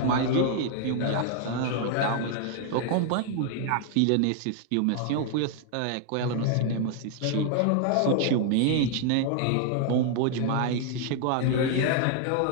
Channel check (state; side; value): different; both; correlation 0.00